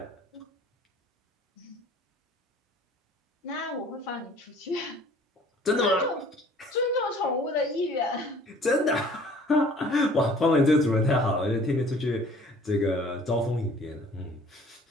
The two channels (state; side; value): normal; both; correlation 0.52